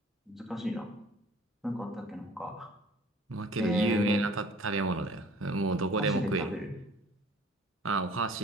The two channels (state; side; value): normal; both; correlation 0.50